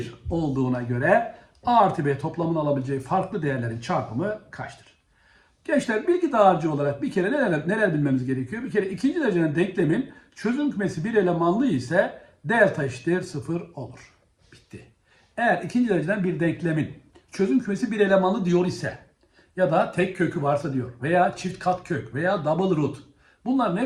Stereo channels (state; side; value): identical; both; correlation 1.00